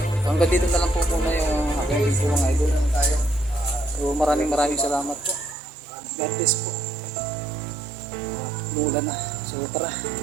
hanggang dito na lang po muna yung aking video mga idol. So maraming salamat po. God bless po. Umuulan na. So tara,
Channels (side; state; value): left; drops out; at 5.6 s